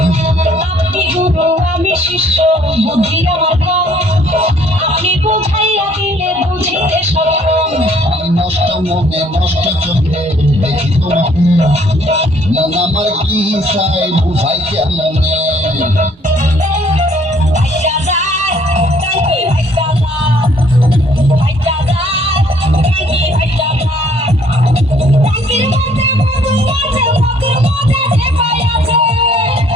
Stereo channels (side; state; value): both; normal; correlation 0.61